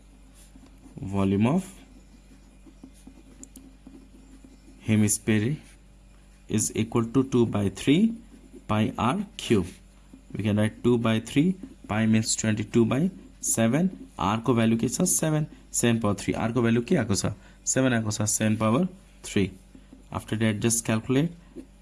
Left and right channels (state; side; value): identical; both; correlation 1.00